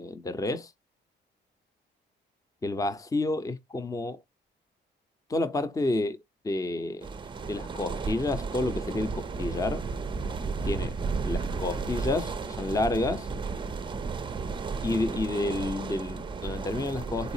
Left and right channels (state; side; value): normal; both; correlation 0.73